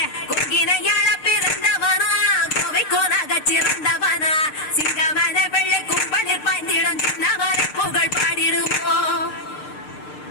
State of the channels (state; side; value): late; right; 6.6 ms